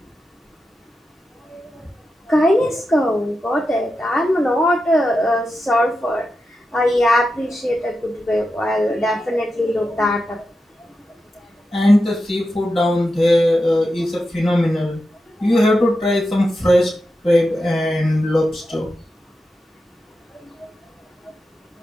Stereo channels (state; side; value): normal; both; correlation 0.90